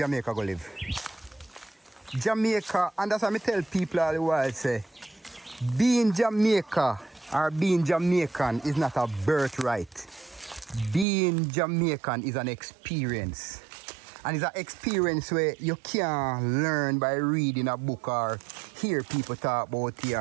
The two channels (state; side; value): drops out; left; at 11.1 s